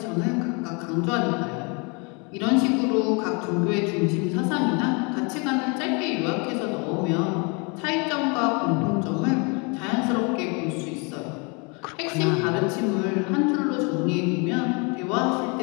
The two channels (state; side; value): quieter; right; 31.9 dB